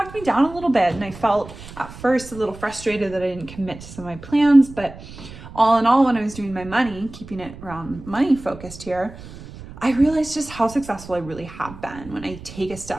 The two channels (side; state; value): right; noise; rumble, 16 dB below the sound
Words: me down a little bit. And I felt at first a little frustrated that I didn't commit to some of my plans. But all in all, when I was doing my money, keeping it around money focused here, I realized just how successful I really have been when I take a